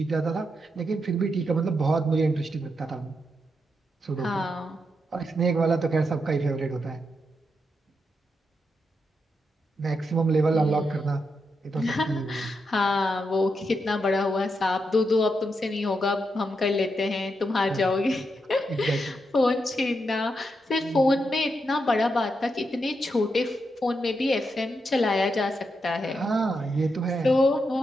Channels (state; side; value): normal; both; correlation 0.84